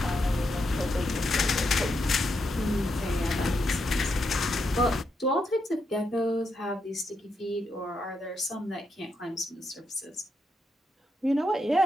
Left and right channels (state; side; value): normal; both; correlation 0.82